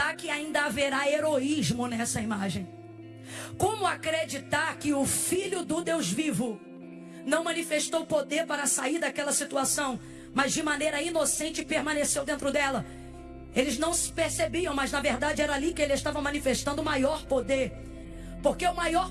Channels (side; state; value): both; identical; correlation 1.00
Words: que ainda haverá heroísmo nessa imagem? Como acreditar que o Filho do Deus vivo não manifestou poder para sair daquela situação, mas de maneira inocente permaneceu dentro dela? Eles não se percebiam, mas na verdade era ali que ele estava manifestando o maior poder. Porque o maior